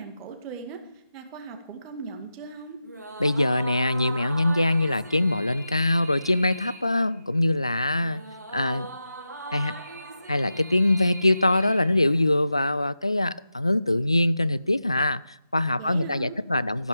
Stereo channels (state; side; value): inverted; both; correlation -0.91